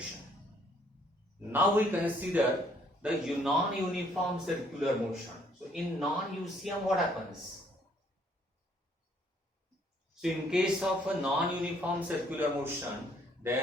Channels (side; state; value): both; normal; correlation 0.65